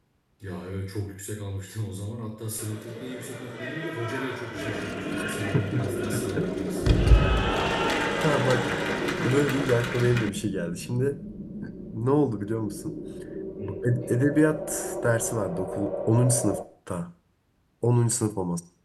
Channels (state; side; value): identical; both; correlation 1.00